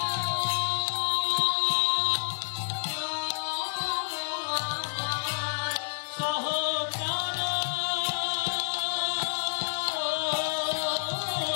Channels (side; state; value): right; silent; 59 dB below the other